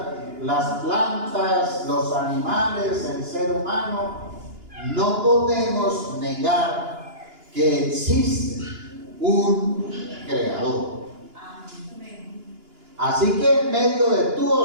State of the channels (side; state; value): left; late; 2.9 ms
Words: las plantas, los animales, el ser humano, no podemos negar que existe un creador. Así que en medio de tu